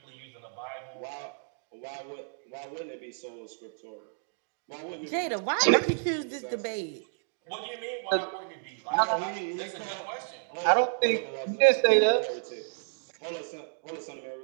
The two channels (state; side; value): silent; left; digital silence